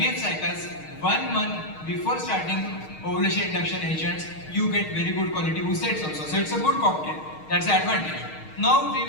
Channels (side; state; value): right; late; 6.5 ms